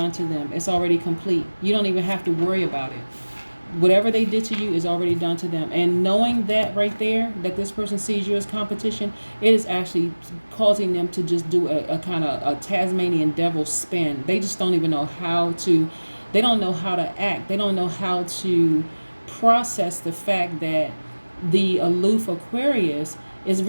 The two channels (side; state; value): both; inverted; correlation -1.00